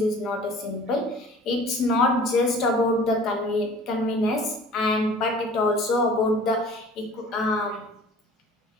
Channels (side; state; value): both; normal; correlation 0.47